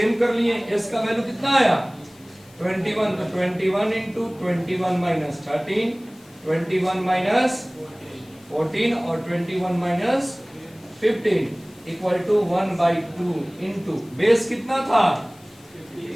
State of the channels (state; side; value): noise; left; hiss, 27 dB below the sound